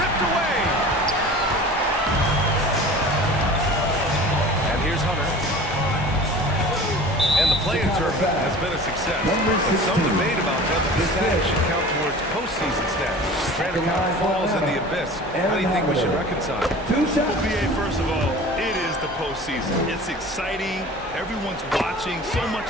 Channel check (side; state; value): both; normal; correlation 0.40